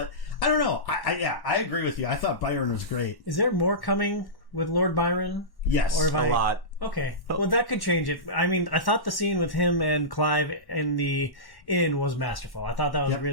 I don't know. I agree with you. I thought Byron was great. Is there more coming with Lord Byron? Yes. Or if A lot. Okay. Well, that could change it. I mean, I thought the scene with him and Clive in the inn was masterful. I thought that was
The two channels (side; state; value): right; late; 1.1 ms